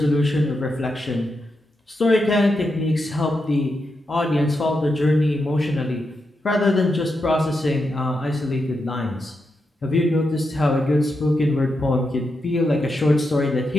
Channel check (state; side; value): normal; both; correlation 0.85